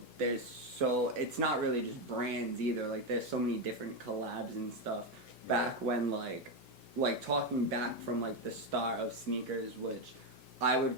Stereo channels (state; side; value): late; left; 1.8 ms